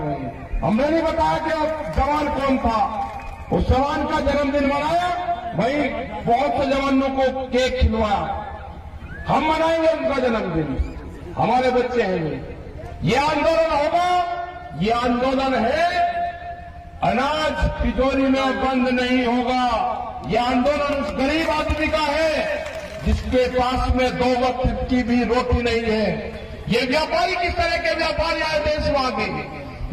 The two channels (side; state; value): both; identical; correlation 1.00